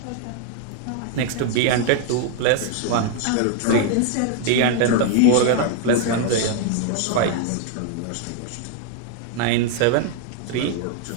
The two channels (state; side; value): different; both; correlation 0.00